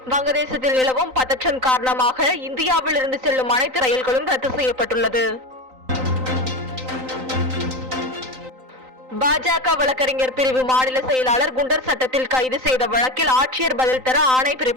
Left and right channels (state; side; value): late; left; 3.9 ms